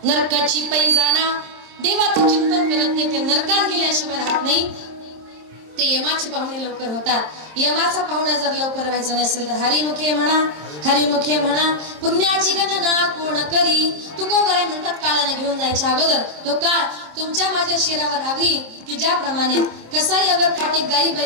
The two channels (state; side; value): late; left; 26 ms